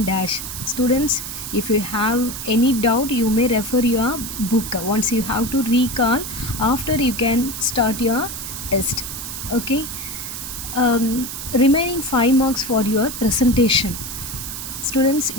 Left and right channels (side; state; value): right; noise; hiss, 7 dB below the sound